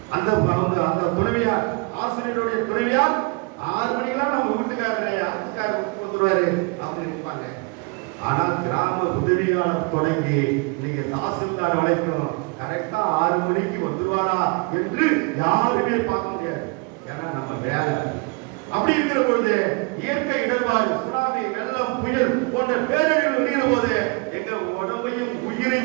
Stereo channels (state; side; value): quieter; left; 30.3 dB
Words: அந்த துணைவியார், ஆசிரியருடைய துணைவியார் 6 மணிக்கெல்லாம் நம்ம வீட்டுக்காரர் வீட்டுக்கு வந்துருவாரு அப்படின்னு இருப்பாங்க. ஆனால் கிராம உதவியாளர் தொடங்கி நீங்க தாசில்தார் வரைக்கும் கரெக்டா 6 மணிக்கு வந்துருவாரா என்று யாருமே பார்க்க முடியாது. ஏன்னா நம்ம வேலை அப்படி இருக்கிற பொழுது இயற்கை இடர்பாடு, சுனாமி, வெள்ளம், புயல் போன்ற பேரழிவு வருகிற போது எங்க உடம்பையும்